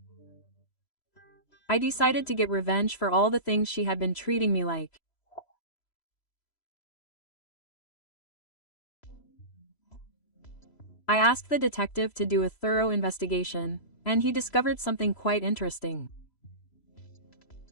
I decided to get revenge for all the things she had been treating me like. I asked the detective to do a thorough investigation, and he discovered something quite interesting.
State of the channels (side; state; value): right; late; 3.0 ms